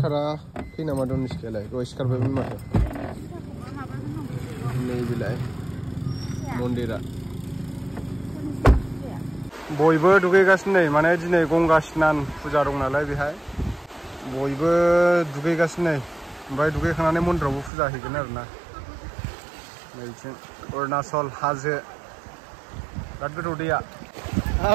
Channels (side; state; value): left; drops out; at 17.7 s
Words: नामा दं सिखायालाय दहाय सिखारबायमोन माथो नैबेलाय मन्दिरा बयबो दुगैगासिनो नै माने दिनै गंगा स्नान फुजा दं नालाय बेहाय बयबो दुगैगासिनो नै ओमफ्राय दुगैखांनानै मन्दिरावबो फुजा हैगोन आरोना नैथिं अरुणाचल हाजो बिराद गोथौ दैया